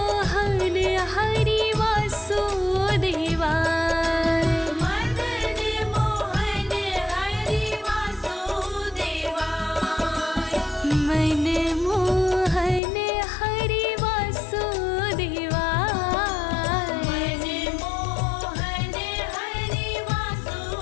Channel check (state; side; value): drops out; right; at 12.8 s